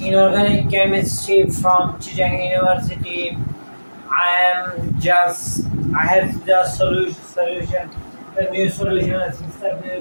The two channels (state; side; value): inverted; both; correlation -1.00